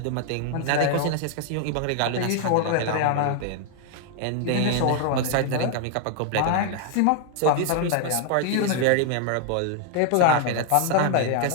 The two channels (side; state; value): both; different; correlation 0.00